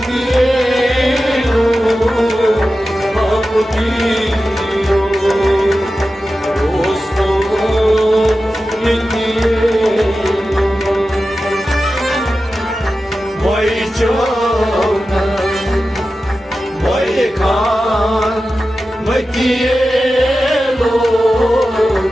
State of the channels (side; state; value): both; normal; correlation 0.93